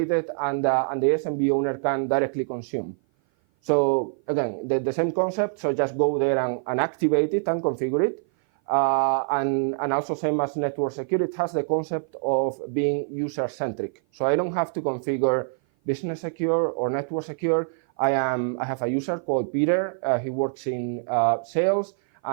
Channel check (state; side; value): silent; left; 56 dB below the other